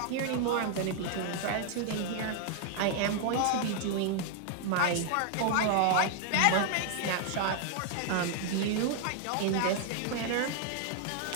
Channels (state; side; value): different; both; correlation 0.00